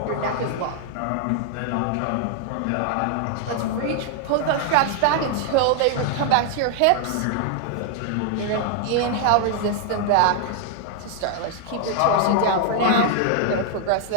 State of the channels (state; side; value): different; both; correlation 0.00